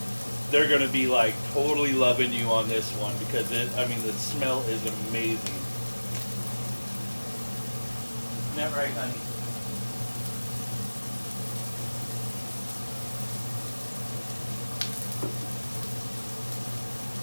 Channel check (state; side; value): inverted; both; correlation -1.00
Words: They're going to be like totally loving you on this one because the smell is amazing. Isn't that right, honey?